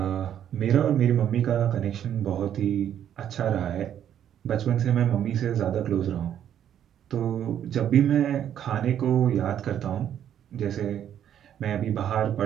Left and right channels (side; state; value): left; quieter; 10.0 dB